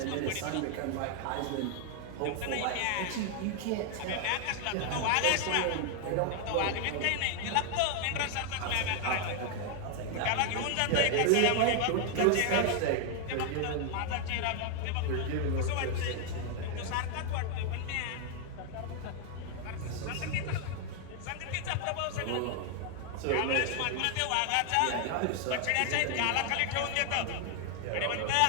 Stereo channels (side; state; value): both; different; correlation 0.00